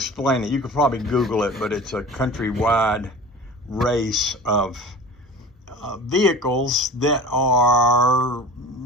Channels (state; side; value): normal; both; correlation 0.38